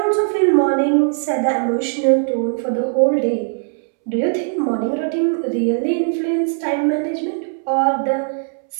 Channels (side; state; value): left; silent; 66 dB below the other